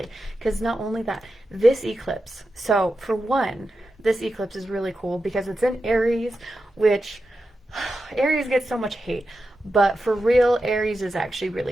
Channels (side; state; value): both; normal; correlation 0.90